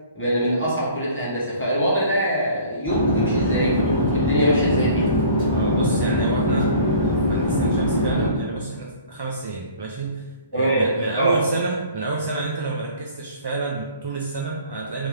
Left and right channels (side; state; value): both; inverted; correlation -0.48